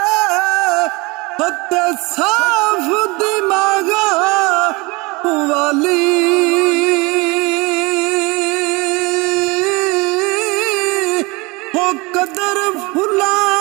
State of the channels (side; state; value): left; quieter; 25.8 dB